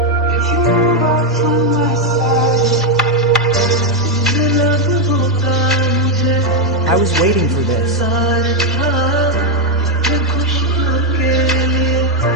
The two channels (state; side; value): normal; both; correlation 0.03